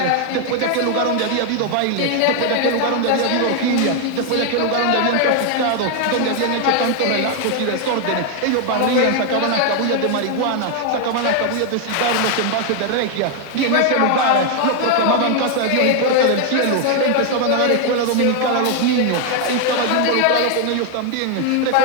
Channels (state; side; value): different; both; correlation 0.00